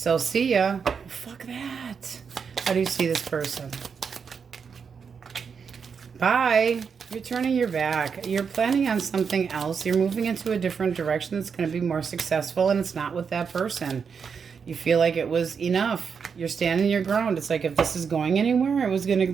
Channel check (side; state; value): left; quieter; 6.2 dB